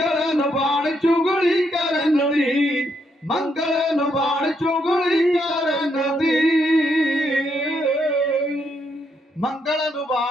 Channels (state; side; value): normal; both; correlation 0.77